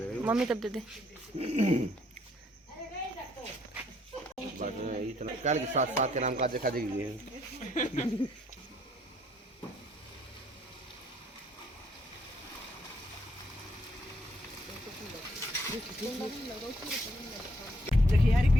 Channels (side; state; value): both; normal; correlation 0.68